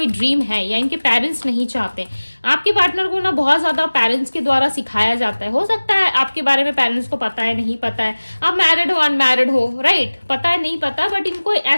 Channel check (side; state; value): both; inverted; correlation -1.00